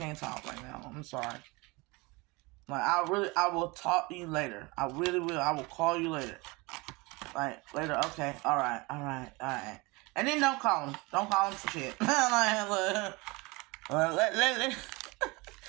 talk right now. I'm sorry. Like I will talk to you later. I really will. I will call you later. Like later, okay, all right. And then don't call him. Don't call him for shit. Let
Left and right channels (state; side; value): quieter; left; 25.1 dB